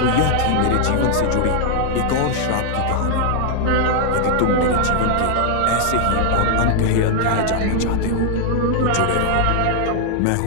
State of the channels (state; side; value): different; both; correlation 0.00